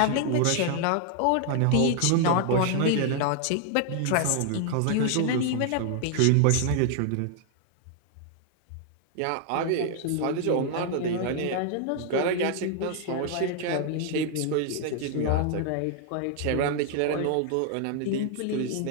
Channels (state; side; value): different; both; correlation 0.00